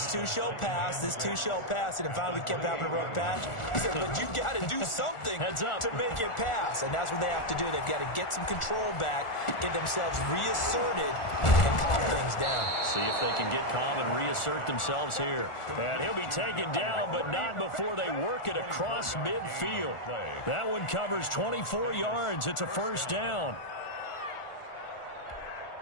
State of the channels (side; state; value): right; late; 1.4 ms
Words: too shall pass, this too shall pass, and if finally we kept having a rough patch, he said, but you got to do something to make it pass, and that's what they have to do. They've got to get some control back, get themselves reasserted, and calm things down. See if they can get calm and reassert themselves here. And he'll be taken down, but not before they work it across midfield. That one covers 24 yards. It's a 1st down.